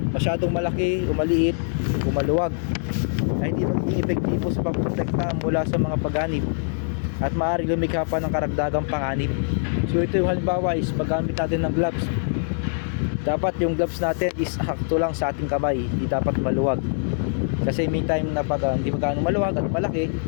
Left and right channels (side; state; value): right; silent; digital silence